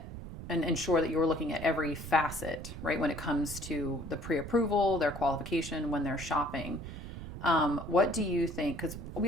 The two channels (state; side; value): noise; right; rumble, 10 dB below the sound